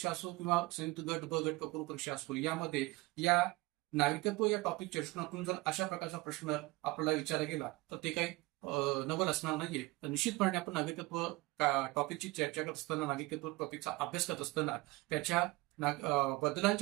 असो किंवा संयुक्त गट ब गट पूर्व परीक्षा असो यामध्ये या नागरिकत्व या टॉपिकच्या दृष्टिकोनातून जर अशा प्रकारचा प्रश्न आपल्याला विचारला गेला तर ते काही नवल असणार नाहीये. तर निश्चितपणे आपण नागरिकत्व टॉपिकची चर्चा करत असताना, नागरिकत्व टॉपिकचा अभ्यास करत असताना त्याच्या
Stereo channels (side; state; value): left; quieter; 21.9 dB